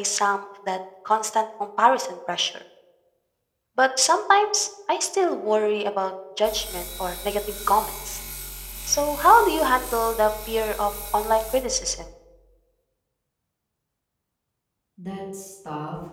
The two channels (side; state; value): both; identical; correlation 1.00